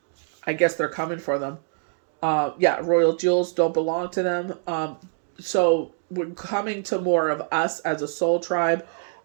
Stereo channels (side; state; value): left; silent; digital silence